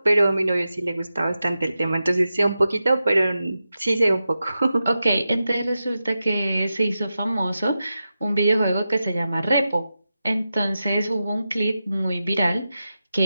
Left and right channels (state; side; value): inverted; both; correlation -0.91